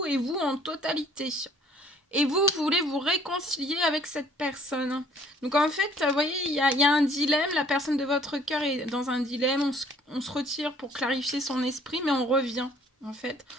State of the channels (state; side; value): normal; both; correlation 0.58